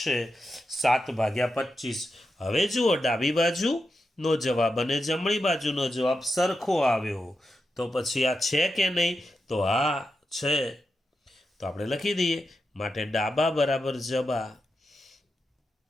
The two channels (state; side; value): normal; both; correlation 0.87